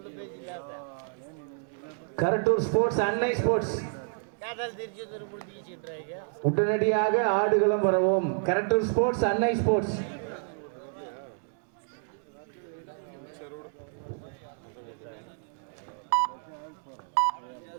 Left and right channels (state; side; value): silent; left; digital silence